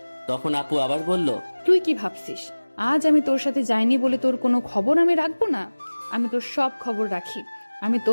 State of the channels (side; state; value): both; inverted; correlation -1.00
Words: তখন আপু আবার বলল, তুই কি ভাবছিস আজ আমি তোর সাথে যাইনি বলে তোর কোনো খবর আমি রাখবো না? আমি তোর সব খবর রাখি। আমি